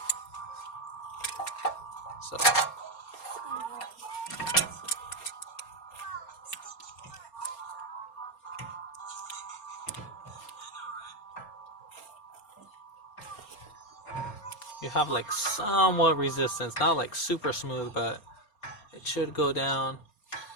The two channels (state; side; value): late; right; 4.3 ms